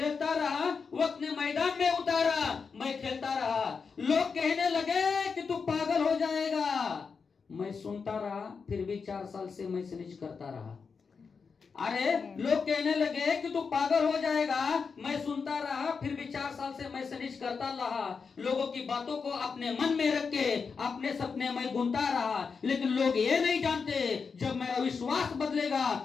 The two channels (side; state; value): right; quieter; 5.4 dB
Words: रहा, वक्त ने मैदान में उतारा, मैं खेलता रहा. लोग कहने लगे कि तू पागल हो जाएगा, मैं सुनता रहा, फिर भी 4 साल से मैं सनेज करता रहा. अरे लोग कहने लगे कि तू पागल हो जाएगा, मैं सुनता रहा, फिर भी 4 साल से मैं सनेज करता रहा. लोगों की बातों को अपने मन में रख के अपने सपने में बुनता रहा. लेकिन लोग ये नहीं जानते, जब मेरा विश्वास बदलेगा